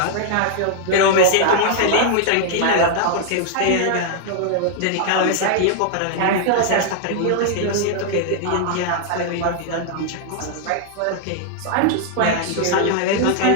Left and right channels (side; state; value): both; different; correlation 0.00